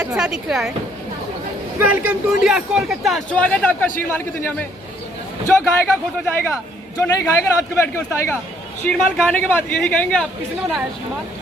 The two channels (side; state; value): both; normal; correlation 0.65